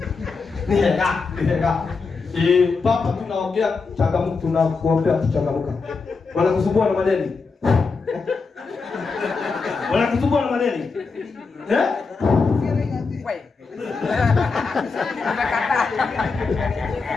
Nih kak. Papa tunaongea changamoto, tunakuombea changamoto. Wanakusumbua na madeni. Wanakusumbua na madeni. Wewe. Unakataa.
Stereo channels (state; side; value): quieter; right; 4.5 dB